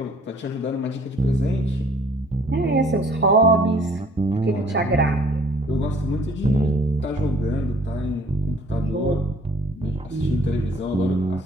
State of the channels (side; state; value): both; normal; correlation 0.57